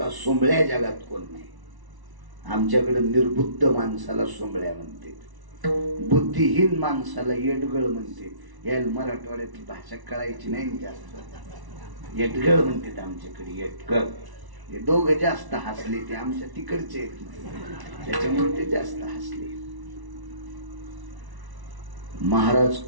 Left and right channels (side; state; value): left; late; 1.1 ms